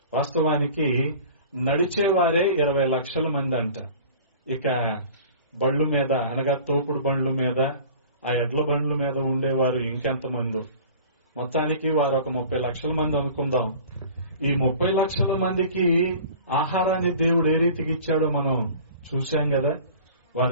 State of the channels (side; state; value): both; inverted; correlation -0.44